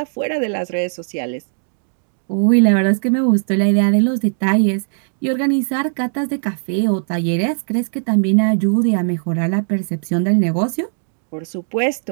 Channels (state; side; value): silent; left; digital silence